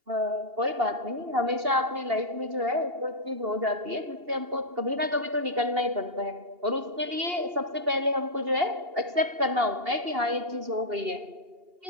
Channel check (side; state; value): left; late; 2.8 ms